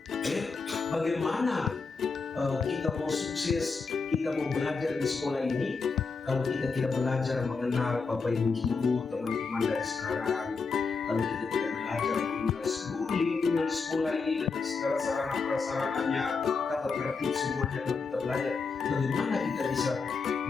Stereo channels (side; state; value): right; quieter; 4.7 dB